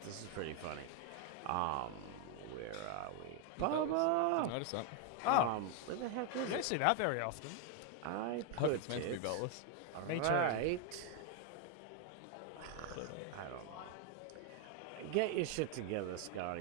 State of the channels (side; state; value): both; different; correlation 0.01